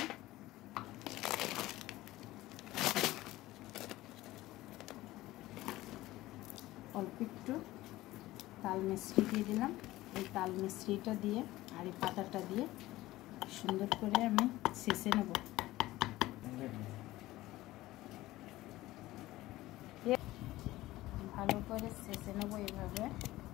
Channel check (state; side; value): quieter; right; 17.2 dB